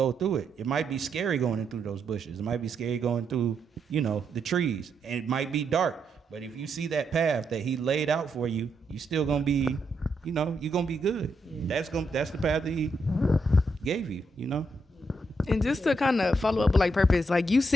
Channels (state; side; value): normal; both; correlation 0.80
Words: through it. It might be scary going through those bushes. It might be scary going through, you know, the trees. And it might be dark. But if you see that path that he laid out for you, you still gonna be, you know, you're gonna be good. Yeah. That's the path that he gave you, you know? And just to kind of follow up with like purpose, like you